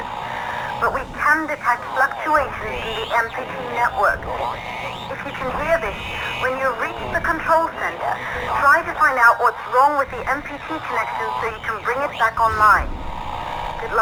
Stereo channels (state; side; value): identical; both; correlation 1.00